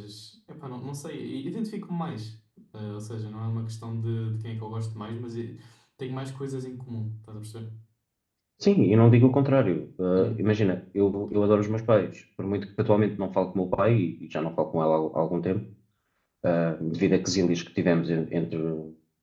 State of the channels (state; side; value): identical; both; correlation 1.00